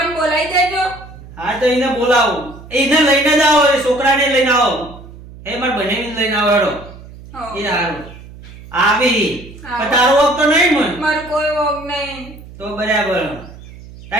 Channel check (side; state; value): right; noise; hum, 18 dB below the sound